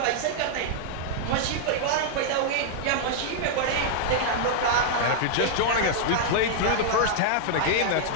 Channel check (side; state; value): both; different; correlation -0.01